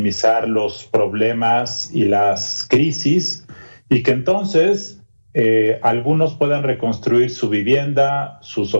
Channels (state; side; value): inverted; both; correlation -1.00